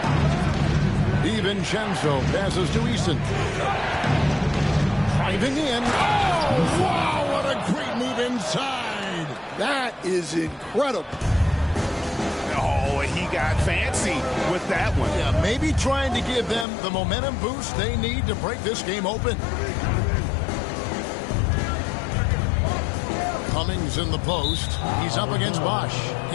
DiVincenzo passes to Eason. Driving in. Oh, wow, what a great move inside. That is incredible. Oh, he got fancy with that one. Yeah, maybe trying to give them the momentum boost they need to break this game open. Cummings in the post. He's up against Bosch.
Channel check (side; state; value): right; drops out; at 16.7 s